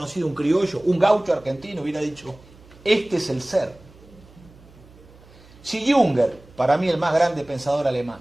un criollo, un gaucho argentino, hubiera dicho, este es el ser. Si Junger, para mí el más grande pensador alemán,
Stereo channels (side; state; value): right; noise; hum, 24 dB below the sound